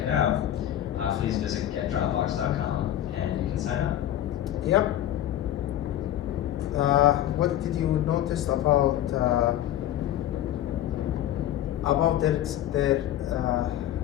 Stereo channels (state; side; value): quieter; right; 12.3 dB